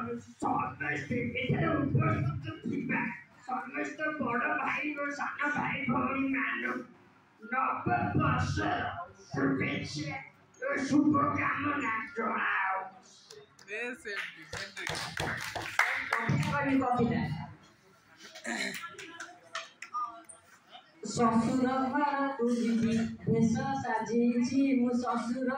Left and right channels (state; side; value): identical; both; correlation 1.00